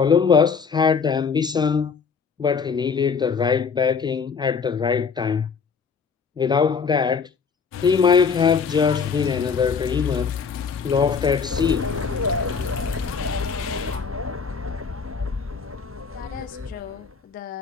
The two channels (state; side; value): quieter; right; 5.8 dB